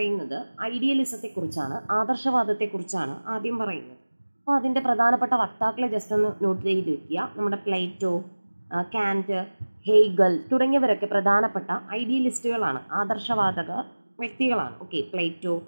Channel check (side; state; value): both; inverted; correlation -1.00